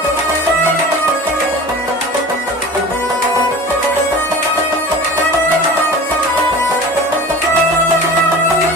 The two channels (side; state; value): both; normal; correlation 0.38